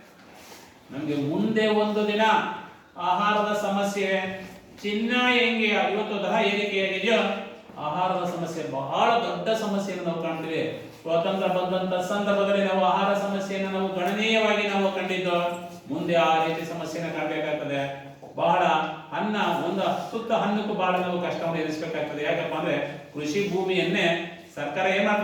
ನಮ್ಗೆ ಮುಂದೆ ಒಂದು ದಿನ ಆಹಾರದ ಸಮಸ್ಯೆ, ಚಿನ್ನ ಹೆಂಗೆ ಇವತ್ತು ದರ ಏರಿಕೆಯಾಗಿದೆಯೋ ಆಹಾರದ ಸಮಸ್ಯೆ ಬಹಳ ದೊಡ್ಡ ಸಮಸ್ಯೆಯನ್ನು ನಾವು ಕಾಣ್ತೀವಿ. ಸ್ವಾತಂತ್ರ್ಯ ಬಂದಂತ ಸಂದರ್ಭದಲ್ಲಿ ನಾವು ಆಹಾರ ಸಮಸ್ಯೆಯನ್ನು ನಾವು ಗಣನೀಯವಾಗಿ ನಾವು ಕಂಡಿದ್ದು. ಮುಂದೆ ಆ ರೀತಿ ಸಮಸ್ಯೆನ ಕಾಣಬೇಕಾಗ್ತದೆ. ಬಹಳ ಅನ್ನ, ಒಂದು ಸುತ್ತ ಹಣ್ಣಕ್ಕೂ ಬಹಳ ನಾವು ಕಷ್ಟವನ್ನು ಎದುರಿಸಬೇಕಾಗ್ತದೆ. ಯಾಕಪ್ಪ ಅಂದ್ರೆ ಕೃಷಿ ಭೂಮಿಯನ್ನೇ ಸರ್ಕಾರ ಏನ್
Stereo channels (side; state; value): both; identical; correlation 1.00